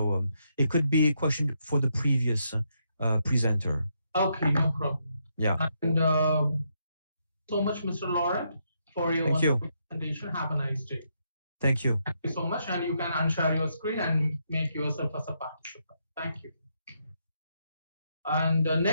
it could be a question for the previous presenter. Okay, no problem. Yeah. And so much, Mr. Laurent, for your presentation. Have a nice day. Thank you. Thank you so much. And you can unshare your screen and make yourself as a participant. Thank you. And the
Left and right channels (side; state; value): both; inverted; correlation -0.78